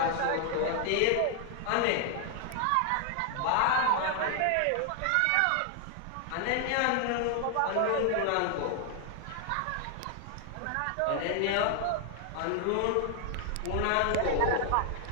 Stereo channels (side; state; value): both; different; correlation 0.00